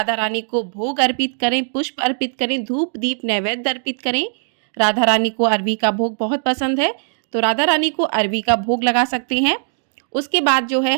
रानी को भोग अर्पित करें, पुष्प अर्पित करें, धूप दीप नैवेद्य अर्पित करें। राधा रानी को अरबी का भोग बहुत पसंद है, तो राधा रानी को अरबी का भोग लगा सकते हैं। उसके बाद जो है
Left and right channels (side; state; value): left; silent; digital silence